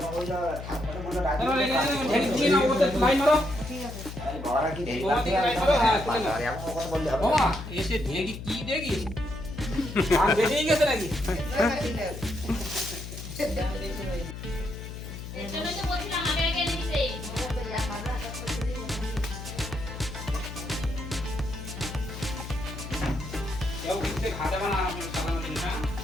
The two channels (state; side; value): noise; left; hum, 9 dB below the sound